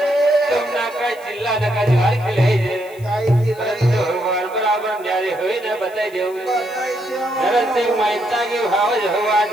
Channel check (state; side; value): noise; left; hiss, 24 dB below the sound